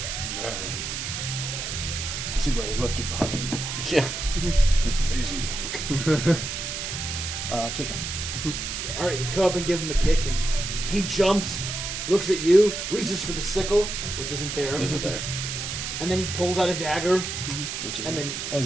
Man. I see why they left him behind. Yeah. He's lazy. Kick him. All right, you come up and give him a kick, and he jumps, looks at you, reaches for the sickle, which isn't there. Is it there? And then he pulls out a dagger, Which is and then oh,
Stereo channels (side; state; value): right; noise; hiss, 4 dB below the sound